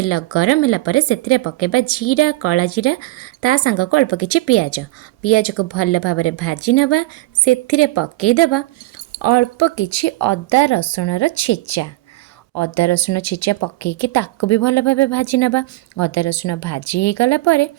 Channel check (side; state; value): left; quieter; 19.3 dB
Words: गरम होला परे सेथिरे पकेबा जीरा कला जीरा ता संग को अल्प किछि पियाज। पियाज को भल भाबरे भाजी नबा। सेथिरे पकेइदबा अल्प किछि अदा रसुण रो छेचा। अदा रसुण छेचा पकईकि ताको भी भल भाव भाजी नबा। अदा रसुण भाजी हो गला परे